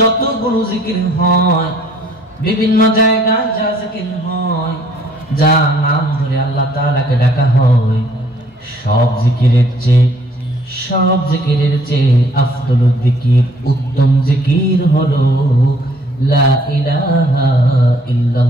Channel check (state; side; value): normal; both; correlation 0.61